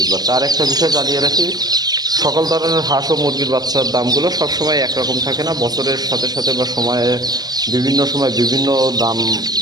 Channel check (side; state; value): left; late; 0.19 ms